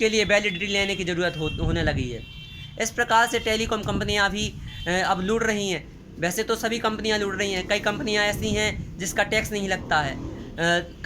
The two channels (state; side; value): identical; both; correlation 1.00